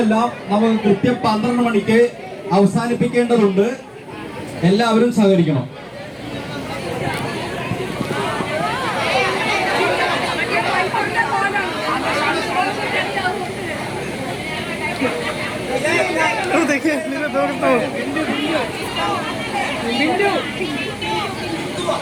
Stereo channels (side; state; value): both; identical; correlation 1.00